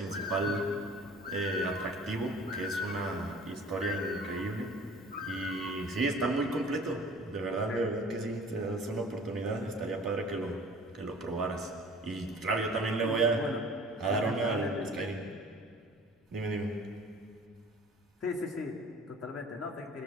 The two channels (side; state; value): both; normal; correlation 0.47